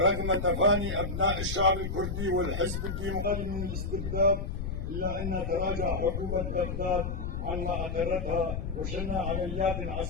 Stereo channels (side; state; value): left; noise; rumble, 4 dB below the sound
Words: تفاني أبناء الشعب الكردي والحزب الديمقراطي من الاستبداد، إلا أن تراجع حكومة بغداد عما أقرتها وشنها عمليات